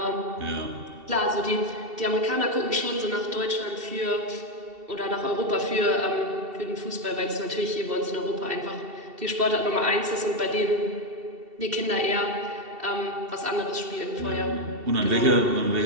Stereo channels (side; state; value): left; late; 2.7 ms